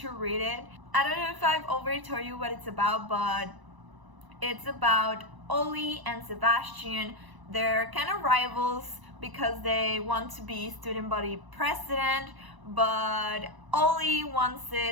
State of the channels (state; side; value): late; left; 1.0 ms